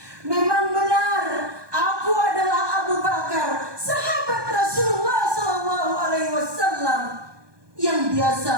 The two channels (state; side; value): late; left; 1.2 ms